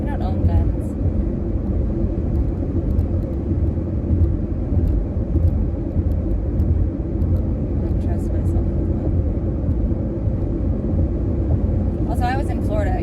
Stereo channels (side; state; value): both; identical; correlation 1.00